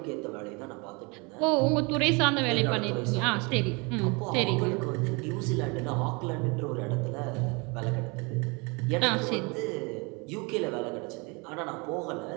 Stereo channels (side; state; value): left; quieter; 29.2 dB